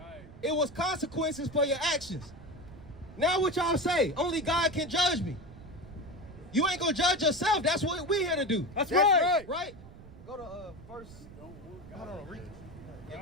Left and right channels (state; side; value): noise; right; rumble, 18 dB below the sound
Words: It was consequences for your actions. Now what y'all say? Only God can judge me. You ain't gonna judge yourself. That's what we're here to do. That's right. Right? Go to verse. Hold on, read.